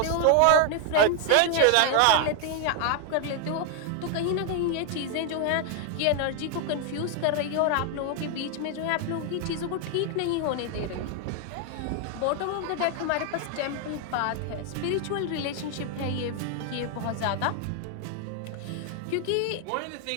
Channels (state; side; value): different; both; correlation 0.00